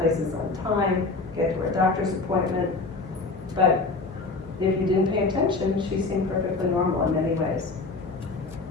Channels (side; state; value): right; quieter; 3.7 dB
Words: places on time, get to her doctor's appointment. But if you didn't pay attention, she seemed perfectly normal in many ways.